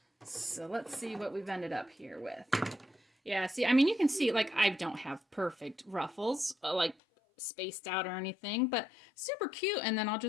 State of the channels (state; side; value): drops out; right; at 7.0 s